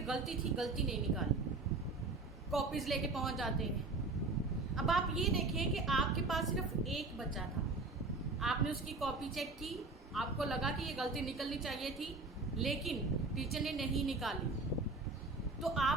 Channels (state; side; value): quieter; left; 3.5 dB